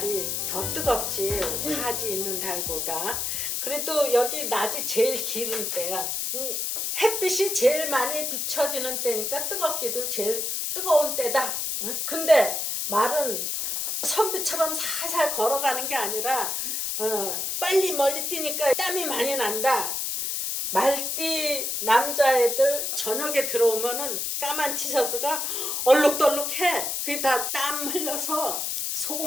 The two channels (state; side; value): noise; left; hiss, 1 dB below the sound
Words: 더 뜨겁지 하지 있는 달보다. 그래도 여기 낮이 제일 길은 때야. 햇빛이 제일 많이 비춰지는 때니까 뜨겁기도 제일 뜨거운 때다. 근데 말은 선비처럼 살살 걸어가는 게 아니라 빨리 멀리 뛰니까 땀이 많이 난다. 말띠 남자애들 저녁에 들어오면은 까만 티셔츠가 얼룩덜룩해. 그게 다 땀 흘려서